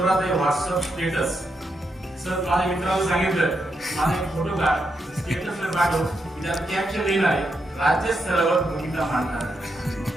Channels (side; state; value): both; normal; correlation 0.83